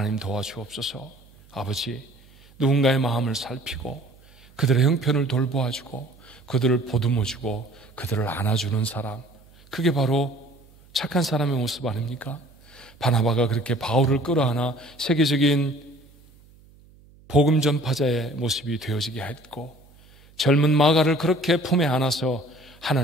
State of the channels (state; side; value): noise; right; hum, 26 dB below the sound